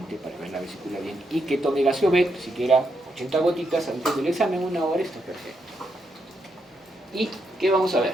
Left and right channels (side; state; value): both; normal; correlation 0.81